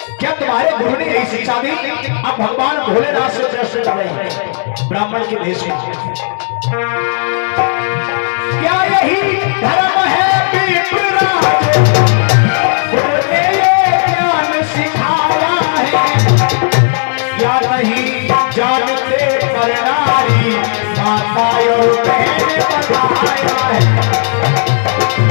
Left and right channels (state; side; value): silent; right; digital silence